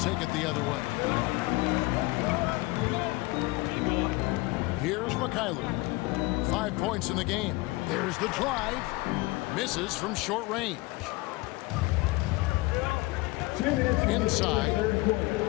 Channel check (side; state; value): right; quieter; 22.2 dB